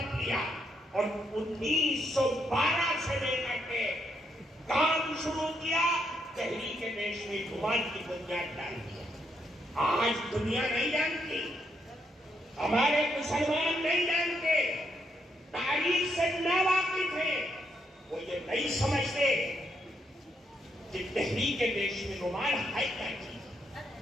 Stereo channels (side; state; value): both; normal; correlation 0.77